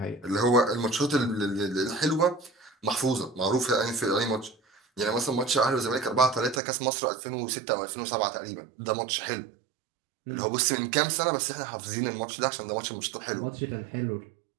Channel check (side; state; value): left; drops out; at 6.6 s